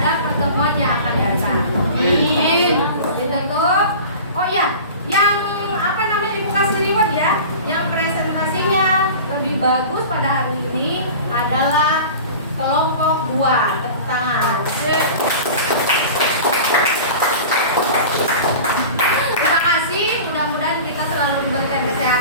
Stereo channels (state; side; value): inverted; both; correlation -0.37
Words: pertemuan yang akan datang. Ditutup. Oh ya, yang apa namanya bagus pada hari ini adalah kelompok 2. Tepuk tangan. Terima kasih, mudah-mudahan kita selalu diberikan